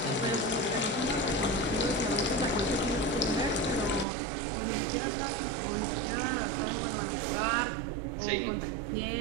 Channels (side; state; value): left; drops out; at 4.0 s